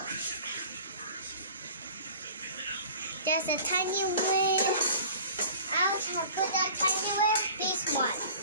There's a tiny way. I'll put that tiny way. This one.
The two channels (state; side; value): inverted; both; correlation -0.43